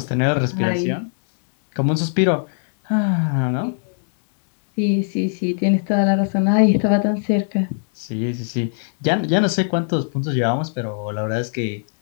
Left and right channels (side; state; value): right; silent; digital silence